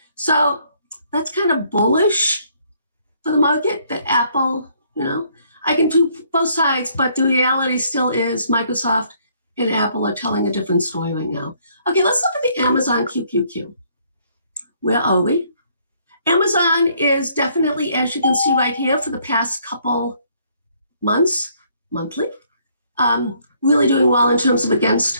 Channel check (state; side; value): inverted; both; correlation -0.66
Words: So that's kind of bullish for the market that Apple, you know, I can do both sides, but the reality still is Microsoft and Apple are telling a different story right now. Okay, let's look at the Amazon QQQ. Where are we? Amazon is definitely, as you can see right here, for the past couple months, monthly, really doing well in terms of